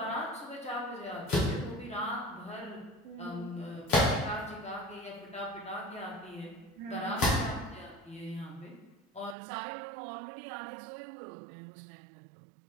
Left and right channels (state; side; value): drops out; left; at 9.3 s